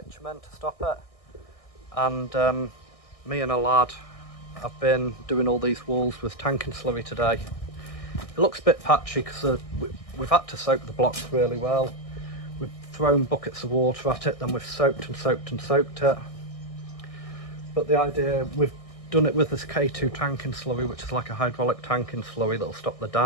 to stop it, and me and a lad have been doing all these walls with tanking slurry today. It looks a bit patchy because we've had to soak the blocks really well. We've thrown buckets of water at it, then we've soaked and soaked and soaked it. But the idea, we've done it with this K2 tanking slurry, which is like a hydraulic tanking slurry that'll stop the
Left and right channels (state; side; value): late; right; 1.6 ms